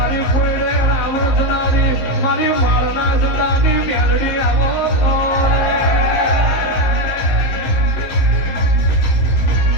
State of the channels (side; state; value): right; late; 15 ms